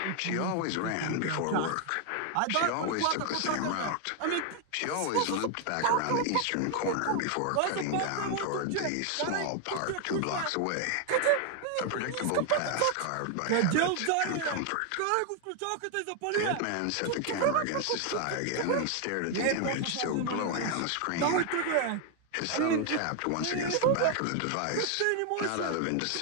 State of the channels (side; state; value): both; different; correlation 0.01